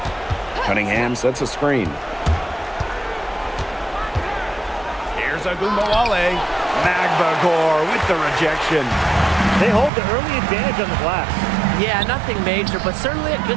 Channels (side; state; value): left; drops out; at 9.9 s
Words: Cunningham sets a screen. Here's Agunmawale. Magbagor with the rejection. They hold the early advantage on the glass. Yeah, nothing major, but certainly a